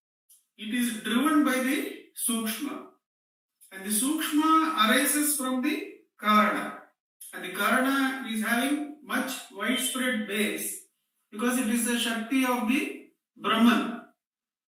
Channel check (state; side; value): identical; both; correlation 1.00